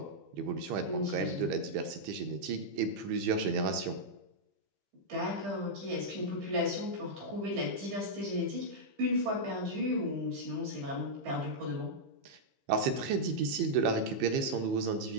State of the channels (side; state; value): left; late; 15 ms